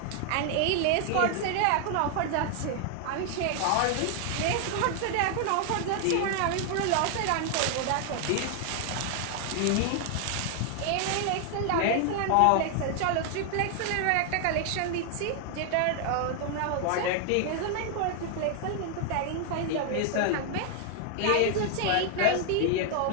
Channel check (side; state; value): both; different; correlation 0.00